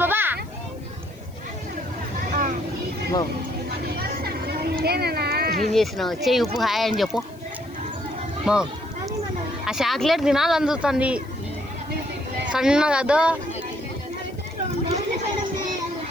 బాబా ఏం చేసినావు? చెయ్యి ఉప్పు హాయ్ అని చెప్పు. ఆ చాక్లెట్ తినాలి అందుతుంది సన్నగా.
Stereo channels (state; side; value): noise; left; hiss, 27 dB below the sound